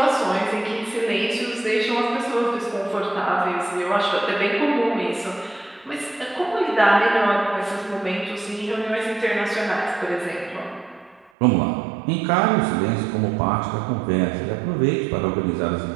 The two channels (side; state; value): left; drops out; at 11.3 s